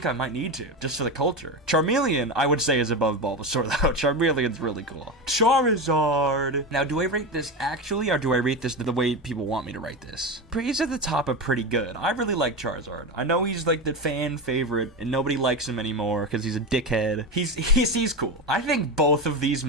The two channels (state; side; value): normal; both; correlation 0.19